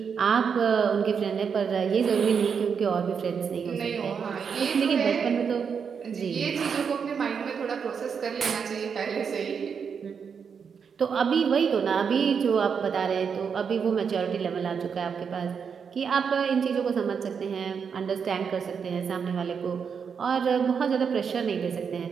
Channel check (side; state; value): left; quieter; 6.5 dB